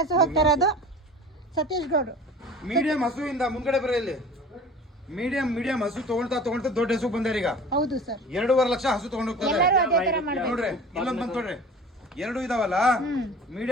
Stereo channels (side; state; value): both; normal; correlation 0.41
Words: ಹೋಗ್ತಾ ಇರೋದು ಸತೀಶ್ ಗೌಡ್ರು. ಮೀಡಿಯಂ ಹಸು ಇಂದ ಮುಂದ್ಗಡೆ ಬರ ಇಲ್ಲಿ. ಮೀಡಿಯಂ ಹಸು ತಗೊಳ್ತಾ ದೊಡ್ಡ ಹಸು ಬಂದಾರ ಈಗ. ಹೌದು ಸರ್, 2.5 ಲಕ್ಷ ಹಸು ತಗೊಂಡು ಹೋಗ್ತಾರೆ. ಎಲ್ಲರೂ ಅದೇ ತರ ಮಾಡ್ಬೇಕು ನೋಡ್ರಿ ಇಲ್ಲೊಂದ್ ಬಂದ್ ನೋಡ್ರಿ, 2 ಇದಾವಲ್ಲ